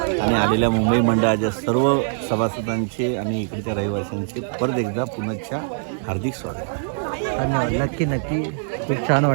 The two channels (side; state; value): left; silent; digital silence